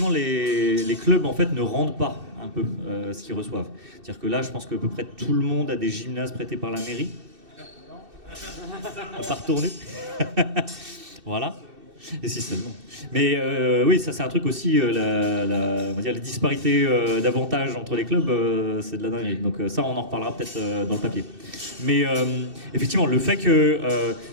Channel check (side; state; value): left; late; 2.6 ms